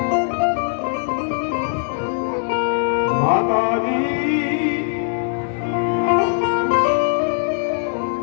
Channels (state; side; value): silent; right; digital silence